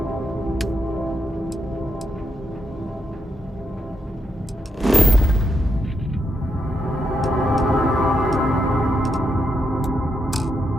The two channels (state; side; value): normal; both; correlation 0.81